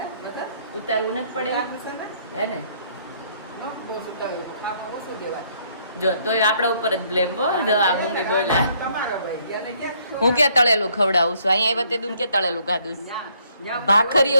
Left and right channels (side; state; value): both; inverted; correlation -0.67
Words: બધા ઉતારવું નથી પડે આપે છે ને હે ને. નો બહુ સુટાવ્યું કામમાં ઓછું દેવાય. જો તોય આપણા ઉપર જ બ્લેમ હો. જો આ મમ્મી બોલ્યા તમારા ભાઈ અને કેમ હું ક્યાં તળેલું ખવડાવું છું, અહીંયા આવ્યા તે દૂન ક્યાં તળેલું ખાધું છે? ન્યા